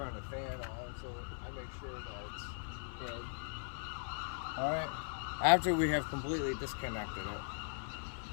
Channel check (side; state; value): right; silent; 52 dB below the other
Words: the fan on so I make sure that it's dead. Alright? After we have completely disconnected it,